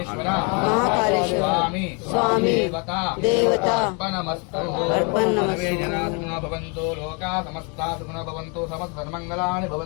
మహాకాళేశ్వర స్వామి దేవత అర్పణమస్తు అర్పణమస్తు. సర్వే జనా సుఖినో భవంతు లోకా సమస్తా సుఖినో భవంతు సమస్తన్మంగళాని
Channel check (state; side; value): quieter; right; 33.8 dB